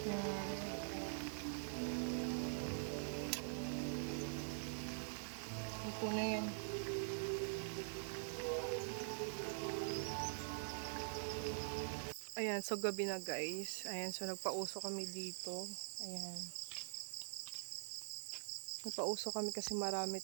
Ayan. Ito na yan. Ayan, so gabi na guys. Ayan, so nagpauso kami dito. Ayan. Nagpauso kami kasi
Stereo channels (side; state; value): left; silent; digital silence